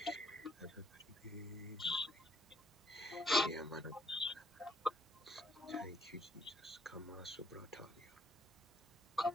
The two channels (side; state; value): both; normal; correlation 0.69